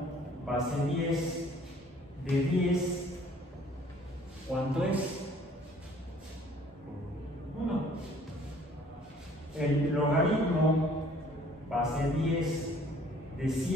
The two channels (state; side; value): normal; both; correlation 0.57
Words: base 10 de 10, ¿cuánto es? 1. El logaritmo base 10 de